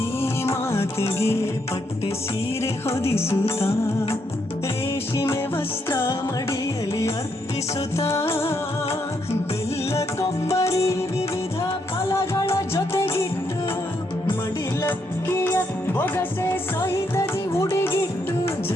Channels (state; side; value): normal; both; correlation 0.77